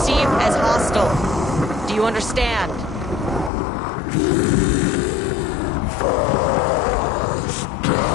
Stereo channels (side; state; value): right; drops out; at 3.5 s